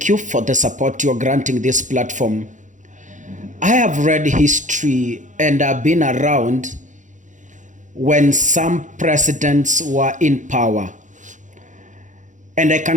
you for the support you are granting this platform. I have read history and I've been around when some presidents were in power. And I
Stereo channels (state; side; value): late; left; 0.36 ms